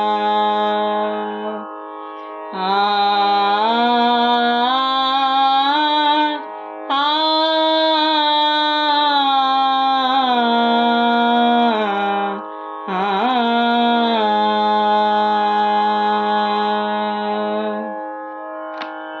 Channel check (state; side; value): identical; both; correlation 1.00